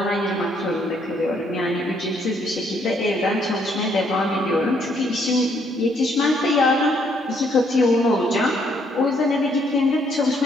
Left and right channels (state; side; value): normal; both; correlation 0.69